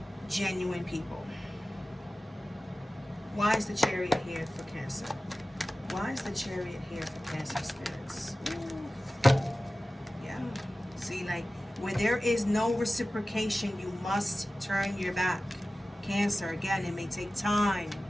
genuine people. Why is the Chariot here for Cancer? Why is the Chariot here for Cancer spirits? Ooh. Yeah. See, like, where there is no reciprocation, you must turn your back. Cancer, again, it may take time.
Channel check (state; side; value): normal; both; correlation 0.96